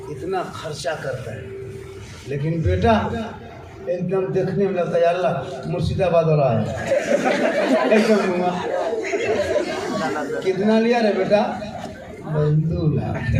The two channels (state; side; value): identical; both; correlation 1.00